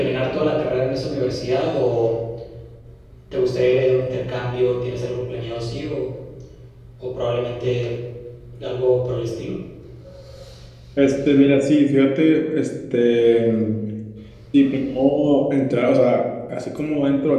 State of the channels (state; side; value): identical; both; correlation 1.00